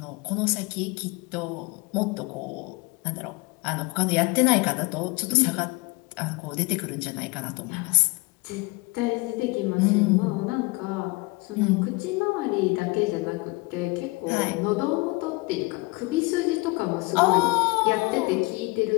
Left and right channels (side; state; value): right; quieter; 24.8 dB